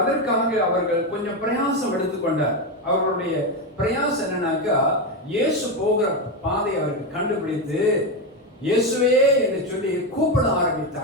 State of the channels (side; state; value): both; normal; correlation 0.11